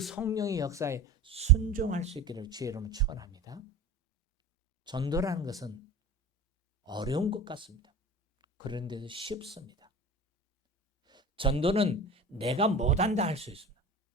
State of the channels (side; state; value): both; normal; correlation 0.33